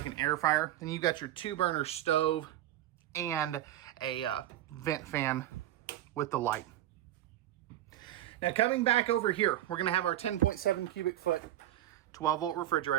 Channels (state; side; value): quieter; left; 13.3 dB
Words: an air fryer. Then you've got your 2-burner stove and a vent fan with the light. Now coming back over here, we're gonna have our 10.7 cubic foot 12 volt